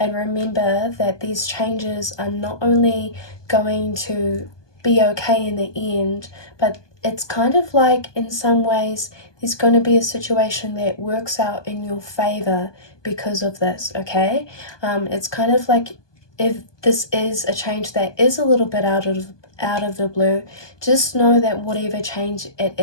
remember that these changes are not only going to be okay in the end, but it's kind of like, in some ways, there's going to be a situation that works out in your favor because of this, okay? It's kind of like, if this is a change that is a little bit out of the blue, just know that whatever change it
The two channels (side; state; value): right; late; 1.2 ms